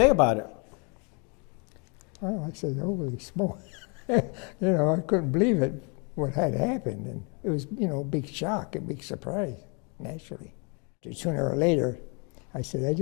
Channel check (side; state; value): right; quieter; 34.4 dB